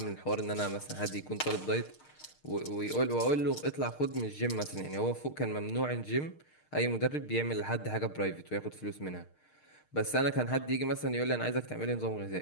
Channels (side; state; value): right; late; 6.5 ms